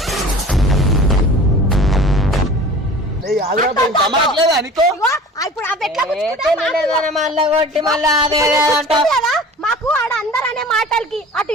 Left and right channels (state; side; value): normal; both; correlation 0.42